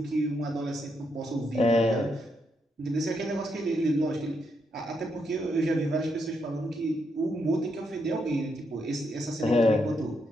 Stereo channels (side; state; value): both; normal; correlation 0.79